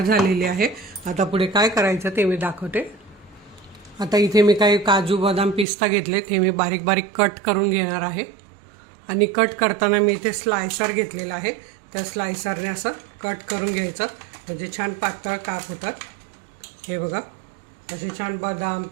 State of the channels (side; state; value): left; drops out; at 5.7 s